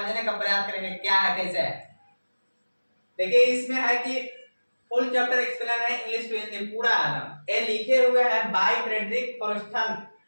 का प्रयास करेंगे क्या है कैसे है। देखिए इसमें है कि फुल चैप्टर एक्सप्लेन है, इंग्लिश टू हिंदी पूरा है ना। ये लिखे हुए हैं बाय फ्रेडरिक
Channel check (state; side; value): inverted; both; correlation -1.00